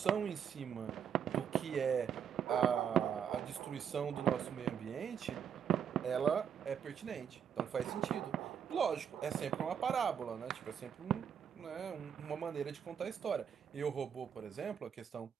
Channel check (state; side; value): quieter; left; 8.1 dB